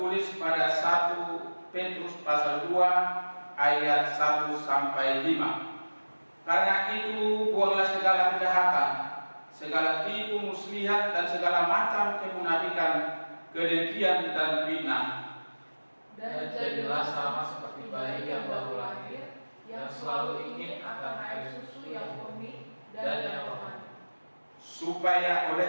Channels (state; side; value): inverted; both; correlation -1.00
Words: pada 1 Petrus pasal 2 ayat 1 sampai 5. Karena itu buanglah segala kejahatan, segala tipu muslihat dan segala macam kemunafikan, kedengkian dan fitnah. Dan jadilah sama seperti bayi yang baru lahir, yang selalu ingin akan air susu yang murni dan yang rohani, Supaya